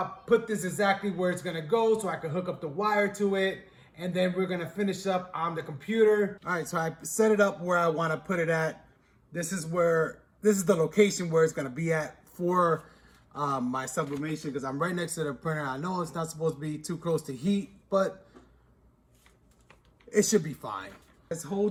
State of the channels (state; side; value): identical; both; correlation 1.00